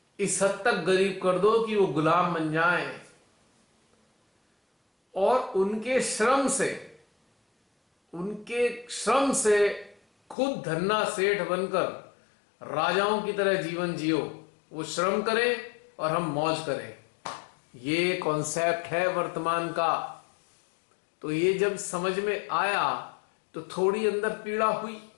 इस हद तक गरीब कर दो कि वो गुलाम बन जाएं और उनके श्रम से खुद धन्ना सेठ बनकर राजाओं की तरह जीवन जियो। वो श्रम करें और हम मौज करें। ये कॉन्सेप्ट है वर्तमान का। तो ये जब समझ में आया तो थोड़ी अंदर पीड़ा हुई।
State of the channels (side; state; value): right; drops out; at 10.4 s